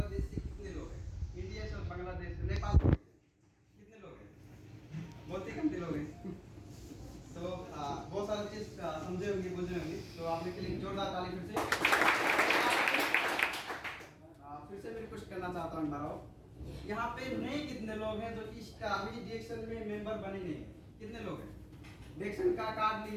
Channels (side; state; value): both; identical; correlation 1.00